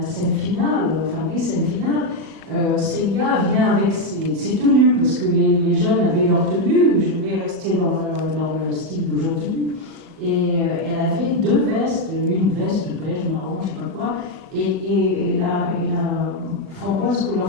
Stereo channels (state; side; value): late; left; 37 ms